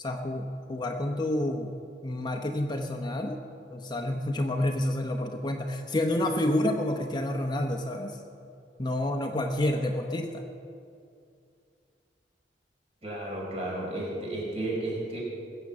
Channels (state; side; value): normal; both; correlation 0.73